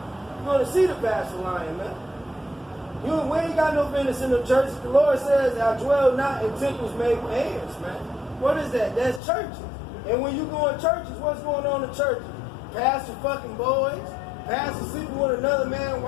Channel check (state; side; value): drops out; right; at 9.2 s